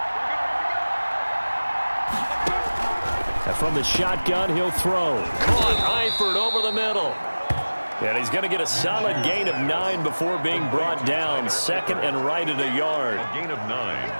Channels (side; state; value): both; inverted; correlation -1.00